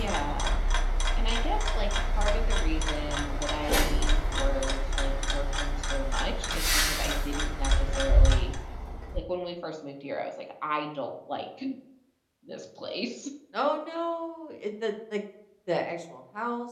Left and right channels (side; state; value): both; identical; correlation 1.00